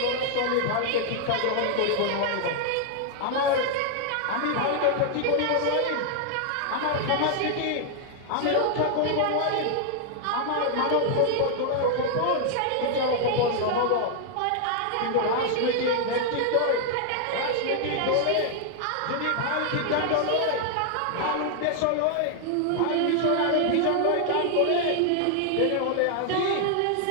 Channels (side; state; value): both; different; correlation 0.00